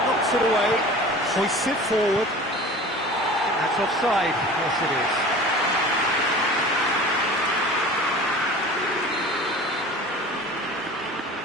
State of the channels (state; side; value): normal; both; correlation 0.40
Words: knocks it away, hoists it forward. That's offside, yes it is.